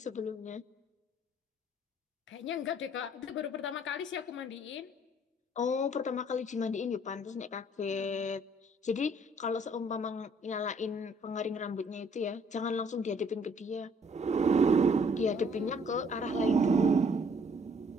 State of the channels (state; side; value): normal; both; correlation 0.61